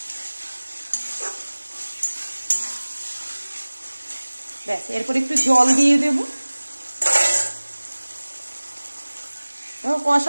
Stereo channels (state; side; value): inverted; both; correlation -1.00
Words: ব্যাস, এরপর একটু জল দিয়ে দেব। দেখো